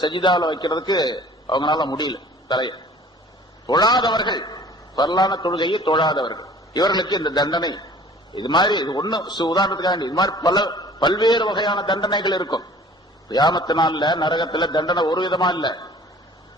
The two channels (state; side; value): normal; both; correlation 0.49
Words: சஜிதால வைக்கிறதுக்கு அவங்களால முடியல. தலையை தொழாதவர்கள், ஃபர்லான தொழுகையை தொழாதவர்கள், இவர்களுக்கு இந்த தண்டனை. இது மாதிரி இது ஒண்ணு உதாரணத்துக்காக, இது மாதிரி பல்வேறு வகையான தண்டனைகள் இருக்கும். கியாமத்து நாள்ல நரகத்துல தண்டனை ஒரு விதமா இல்ல.